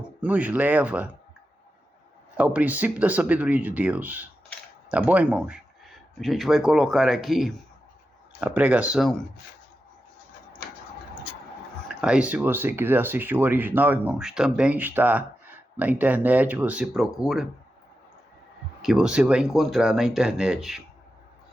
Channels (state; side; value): normal; both; correlation 0.90